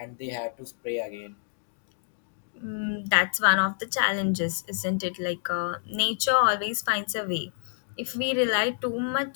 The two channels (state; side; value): silent; right; digital silence